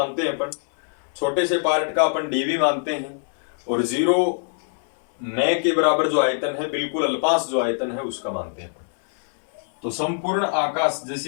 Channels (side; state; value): right; silent; 63 dB below the other